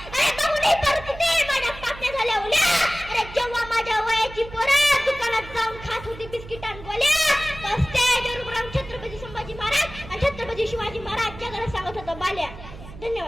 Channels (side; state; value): right; noise; hum, 15 dB below the sound